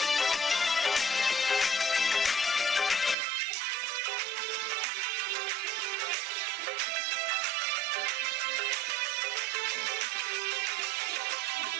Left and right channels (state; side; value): normal; both; correlation 0.52